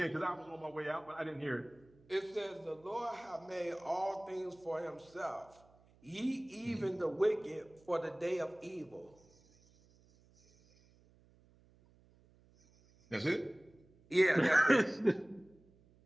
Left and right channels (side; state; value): right; noise; hum, 29 dB below the sound